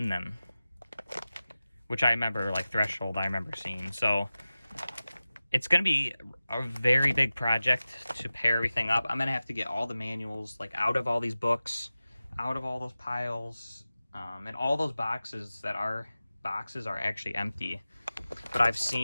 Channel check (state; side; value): inverted; both; correlation -0.96